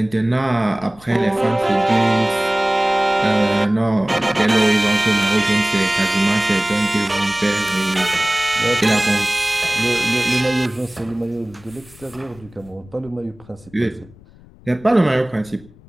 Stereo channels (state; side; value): noise; left; rumble, 24 dB below the sound